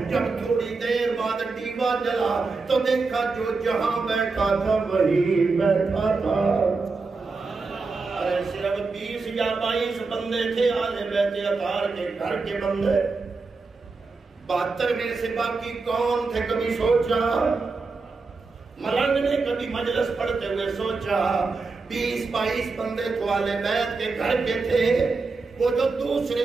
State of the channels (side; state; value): left; quieter; 4.1 dB